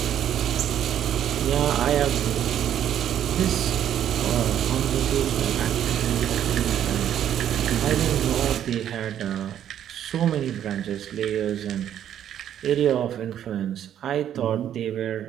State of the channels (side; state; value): left; quieter; 10.4 dB